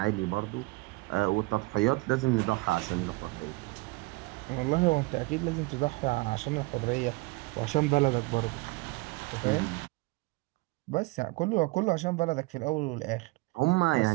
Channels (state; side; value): quieter; left; 24.2 dB